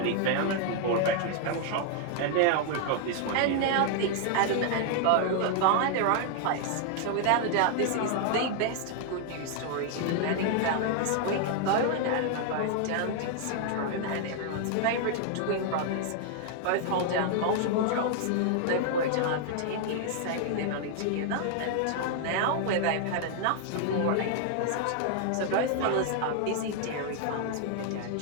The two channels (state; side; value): different; both; correlation 0.00